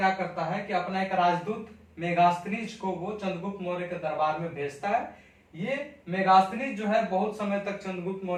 करता है कि अपना एक राजदूत मेगास्थनीज को वो चंद्रगुप्त मौर्य के दरबार में भेजता है। ये मेगास्थनीज जो है बहुत समय तक चंद्रगुप्त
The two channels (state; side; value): identical; both; correlation 1.00